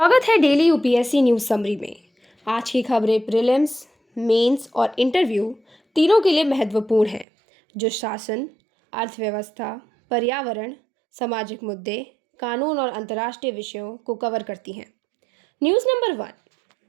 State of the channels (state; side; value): drops out; left; at 7.2 s